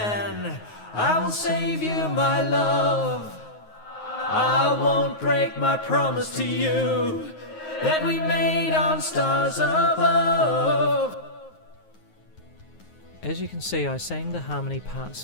I will save you, my love. I won't break my promise to you that we made on stars above. As you can see, I sang the harmony parts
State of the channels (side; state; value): right; late; 9.5 ms